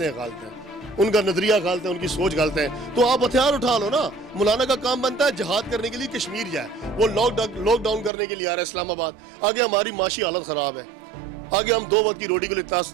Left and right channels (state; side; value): drops out; left; at 8.1 s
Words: ہیں غلط ہیں، ان کا نظریہ غلط ہے، ان کی سوچ غلط ہے، تو آپ ہتھیار اٹھا لو نا۔ مولانا کا کام بنتا ہے جہاد کرنے کے لیے کشمیر جائے، وہ لاک ڈاؤن کرنے کے لیے آ رہا ہے اسلام آباد۔ آگے ہماری معاشی حالت خراب ہے، آگے ہم 2 وقت کی روٹی کے لیے